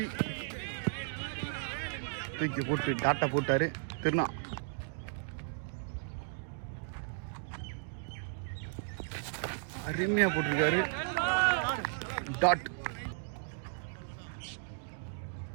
தூக்கி போட்டு டாட்டா போட்டாரு திருநா. அருமையா போட்டிருக்காரு டாட்.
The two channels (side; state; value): left; silent; digital silence